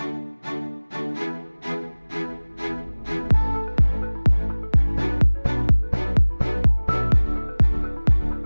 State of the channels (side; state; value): both; inverted; correlation -1.00